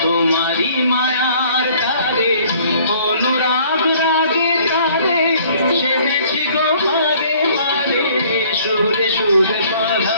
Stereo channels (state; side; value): inverted; both; correlation -0.57